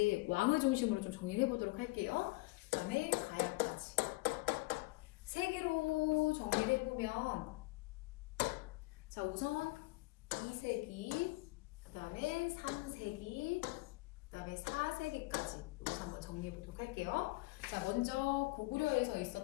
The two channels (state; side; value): quieter; right; 23.1 dB